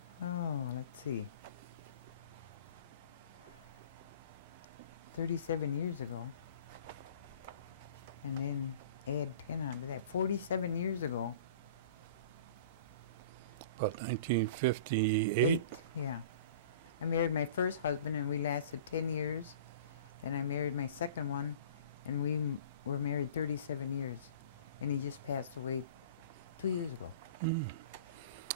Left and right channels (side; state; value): both; inverted; correlation -0.43